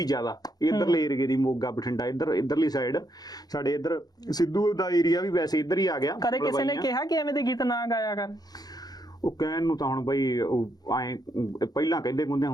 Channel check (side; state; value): right; late; 0.19 ms